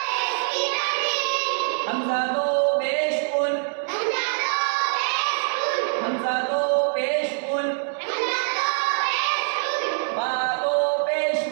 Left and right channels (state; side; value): silent; left; 61 dB below the other